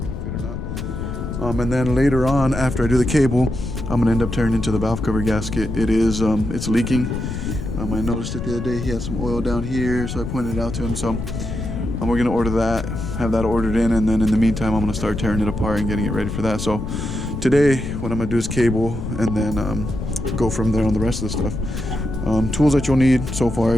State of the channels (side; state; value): left; noise; rumble, 5 dB below the sound